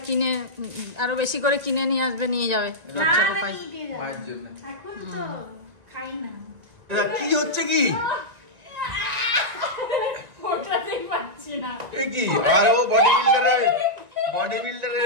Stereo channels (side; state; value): left; late; 1.9 ms